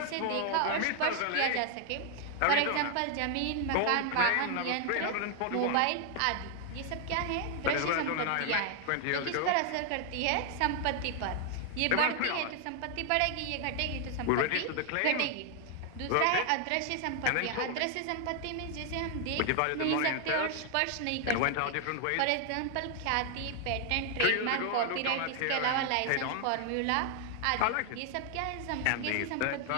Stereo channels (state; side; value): different; both; correlation 0.00